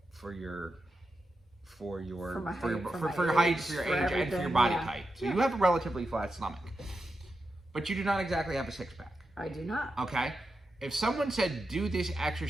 for your height, for your age, and for your body type. So you have a relatively flat stomach, but you do not exactly have a 6-pack. I do not. Okay. If someone said do this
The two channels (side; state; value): both; normal; correlation 0.89